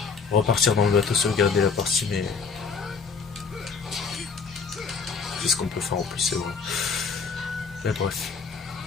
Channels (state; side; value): quieter; right; 5.2 dB